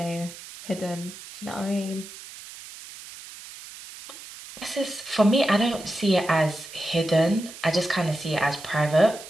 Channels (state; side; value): noise; right; hiss, 15 dB below the sound